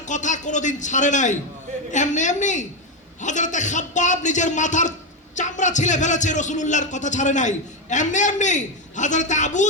কথা কোনোদিন ছাড়ে নাই। এমনি এমনি হযরতে খাব্বাব নিজের মাথার চামড়া ছিলে ফেলেছে, রাসূলুল্লাহর কথা ছাড়ে নাই। এমনি এমনি হযরতে আবু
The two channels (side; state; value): both; normal; correlation 0.08